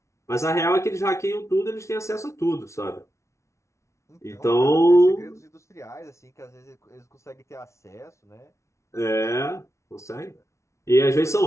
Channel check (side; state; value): right; late; 0.14 ms